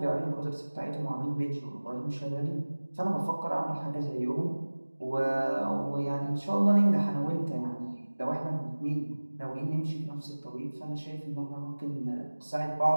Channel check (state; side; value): inverted; both; correlation -1.00